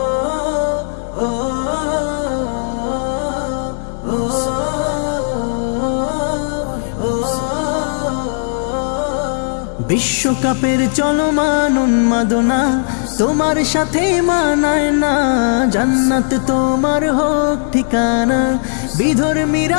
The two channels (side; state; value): right; silent; digital silence